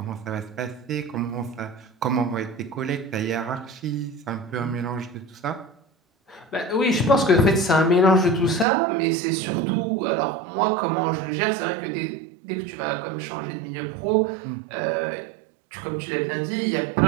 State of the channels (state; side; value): drops out; left; at 8.7 s